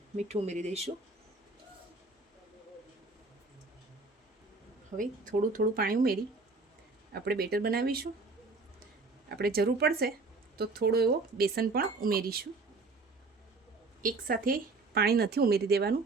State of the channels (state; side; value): quieter; left; 3.6 dB